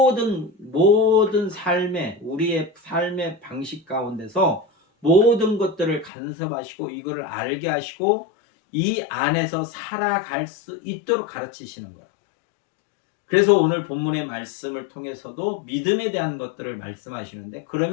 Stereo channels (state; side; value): drops out; right; at 6.1 s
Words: 우리의 삶의 방식 가운데서 모든 것들을 간섭하시고 이거를 알게 하시고 이 안에서 살아갈 수 있도록 가르치시는 거예요. 그래서 오늘 본문의 말씀을 통해서도 믿음에 대한 것들을 말씀하시는데